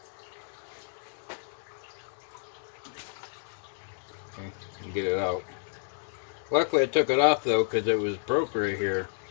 Okay, and get it out. Luckily I took it off though because it was broke right here.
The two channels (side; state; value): right; silent; digital silence